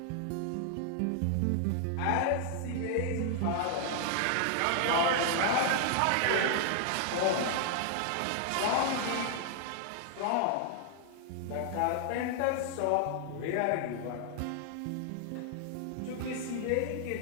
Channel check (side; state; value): both; different; correlation 0.00